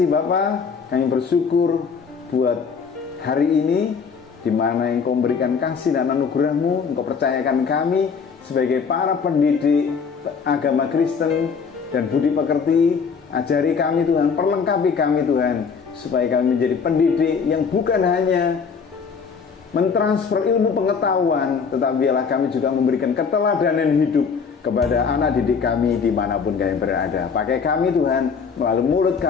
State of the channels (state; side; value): quieter; right; 5.8 dB